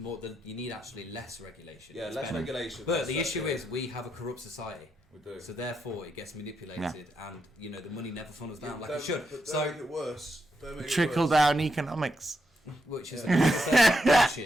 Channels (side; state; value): both; normal; correlation 0.83